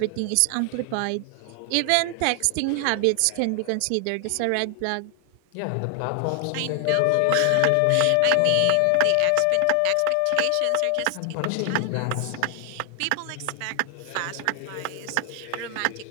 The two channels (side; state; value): both; different; correlation 0.00